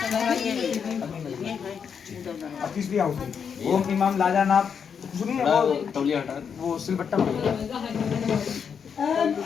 अब तीसरी आहुति ओम इमाम लाजानाप सुनिए वो सिलबट्टा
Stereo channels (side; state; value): right; quieter; 6.9 dB